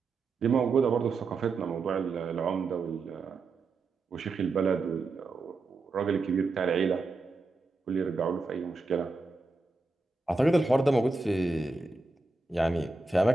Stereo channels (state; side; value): quieter; left; 3.6 dB